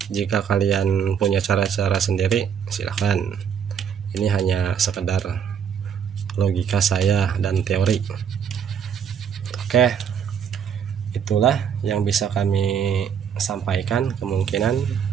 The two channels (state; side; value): quieter; left; 7.8 dB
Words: jika kalian punya cara-cara sendiri silahkan. Ini hanya sekedar logika saya dan teori. Oke, itulah yang bisa kami sampaikan. Kemungkinan